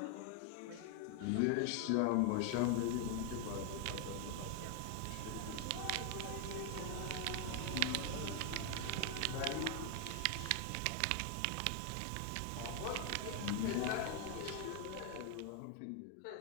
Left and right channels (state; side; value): different; both; correlation 0.01